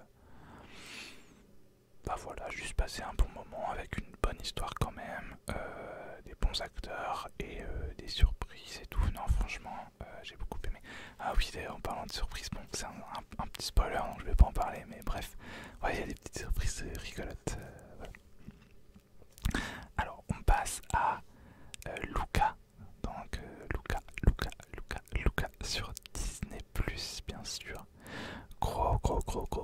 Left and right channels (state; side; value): identical; both; correlation 1.00